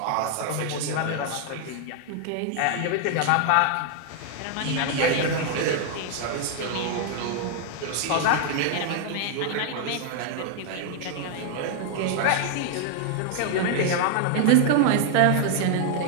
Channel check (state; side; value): different; both; correlation 0.00